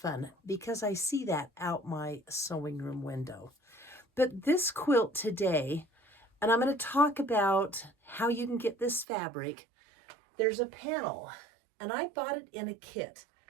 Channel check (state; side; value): drops out; left; at 9.1 s